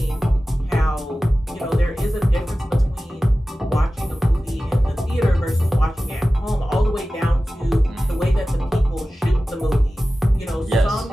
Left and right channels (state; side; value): normal; both; correlation 0.95